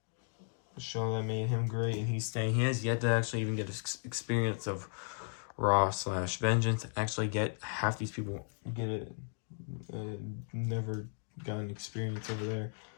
The show that made him great, and he's staying. He has yet to actually even get experience of Raw/Vengeance. Actually get half these people get it. Never got an experience over there.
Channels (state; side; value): silent; right; 54 dB below the other